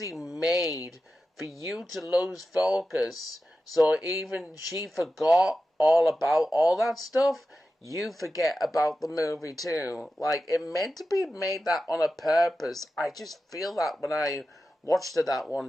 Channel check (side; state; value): both; normal; correlation 0.92